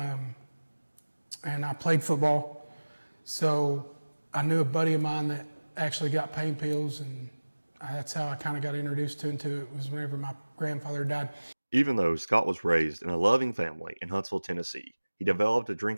and I played football. So I knew a buddy of mine that actually got pain pills, and that's how I kind of got introduced into it, was whenever my grandfather died. Even though Scott was raised in a loving family in Huntsville, Tennessee, he developed a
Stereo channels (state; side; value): inverted; both; correlation -1.00